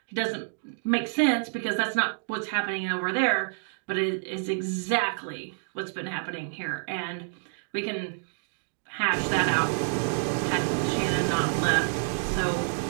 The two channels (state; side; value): silent; left; digital silence